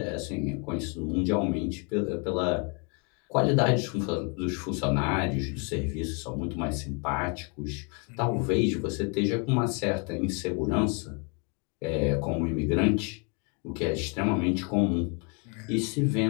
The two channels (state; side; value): quieter; right; 34.1 dB